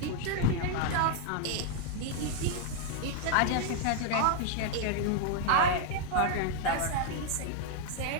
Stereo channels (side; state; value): both; different; correlation 0.00